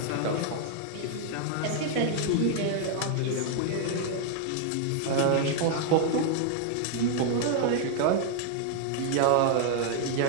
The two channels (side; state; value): both; different; correlation 0.00